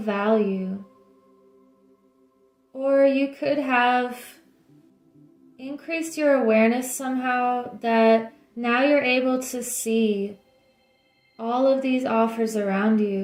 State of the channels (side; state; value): both; identical; correlation 1.00